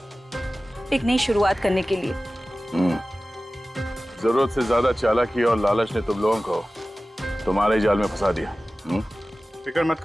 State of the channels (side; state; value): both; normal; correlation 0.96